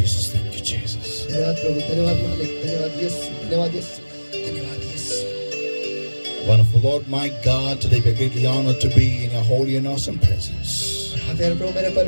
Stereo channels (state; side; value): inverted; both; correlation -1.00